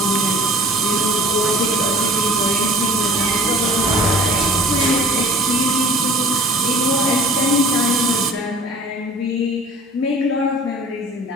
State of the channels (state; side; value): normal; both; correlation 0.46